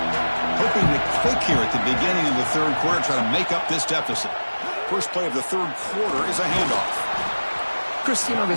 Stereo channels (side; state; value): both; inverted; correlation -1.00